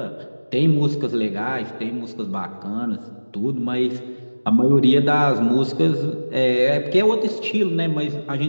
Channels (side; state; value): both; inverted; correlation -1.00